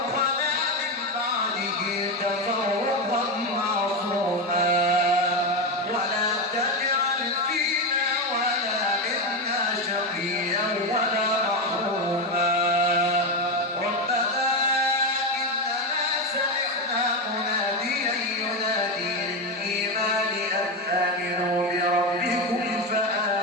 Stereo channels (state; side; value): normal; both; correlation 0.13